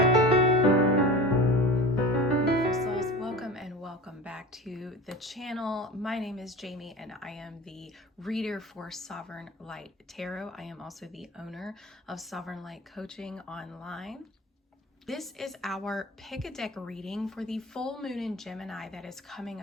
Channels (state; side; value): normal; both; correlation 0.34